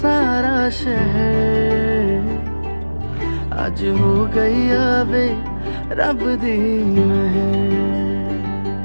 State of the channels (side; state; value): both; inverted; correlation -1.00